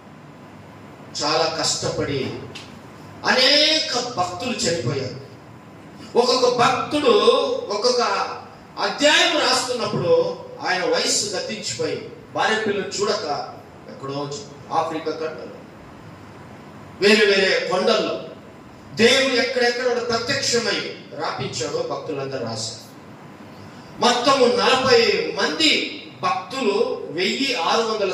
చాలా కష్టపడి అనేక భక్తులు చనిపోయారు. ఒక్కొక్క భక్తుడు ఒక్కొక్క అధ్యాయం రాస్తున్నప్పుడు ఆయన వయస్సు గతించిపోయి భార్య పిల్లలు చూడక ఎక్కడో ఆఫ్రికా ఖండంలో, వేరే వేరే కొండల్లో దేవుడు ఎక్కడెక్కడ ప్రత్యక్షమై రాపించాడో భక్తులందరూ రాశారు. మొత్తము 40 మంది భక్తులు, 1600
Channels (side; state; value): both; identical; correlation 1.00